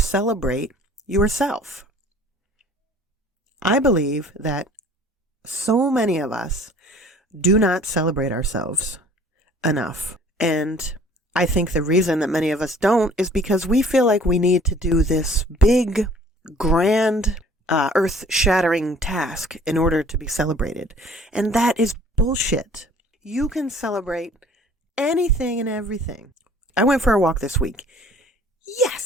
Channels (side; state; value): both; normal; correlation 0.52